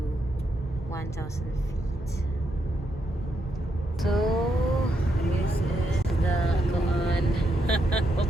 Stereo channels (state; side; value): normal; both; correlation 0.80